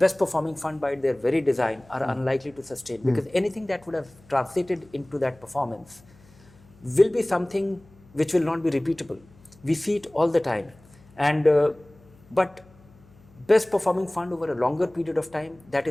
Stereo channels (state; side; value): noise; left; hum, 27 dB below the sound